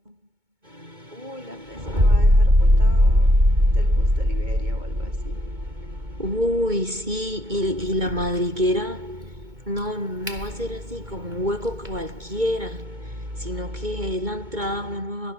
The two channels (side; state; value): left; late; 2.2 ms